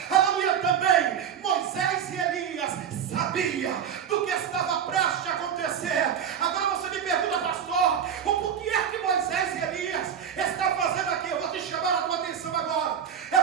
aleluia, também Moisés e Elias sabia do que estava prestes a acontecer. Agora você me pergunta, pastor, o porquê é que Moisés e Elias estão fazendo aqui? Eu vou te chamar a tua atenção agora. É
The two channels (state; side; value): quieter; left; 8.3 dB